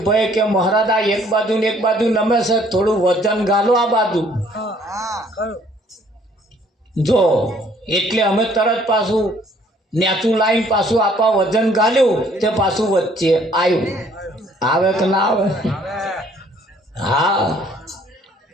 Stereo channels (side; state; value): both; normal; correlation 0.61